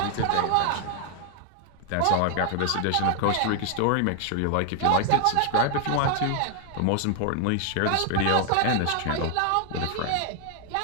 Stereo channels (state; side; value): different; both; correlation 0.00